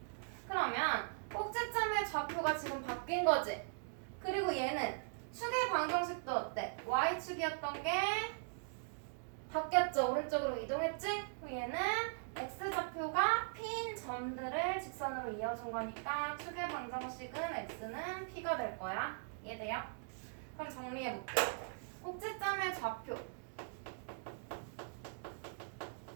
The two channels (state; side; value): silent; left; digital silence